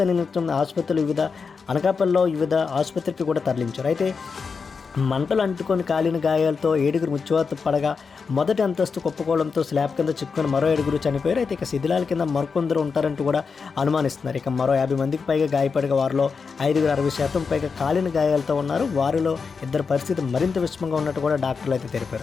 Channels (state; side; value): quieter; right; 5.3 dB